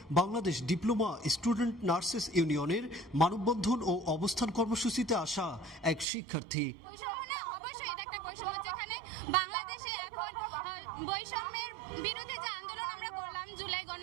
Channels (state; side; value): drops out; left; at 6.1 s